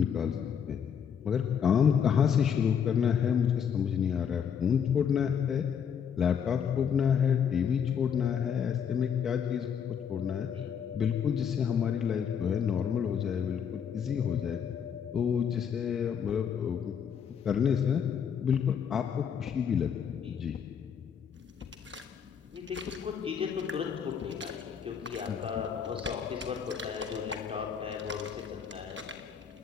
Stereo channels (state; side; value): quieter; right; 7.6 dB